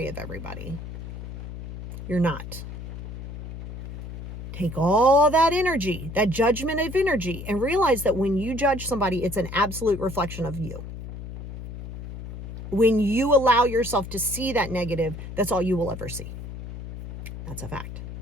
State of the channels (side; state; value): left; noise; hum, 10 dB below the sound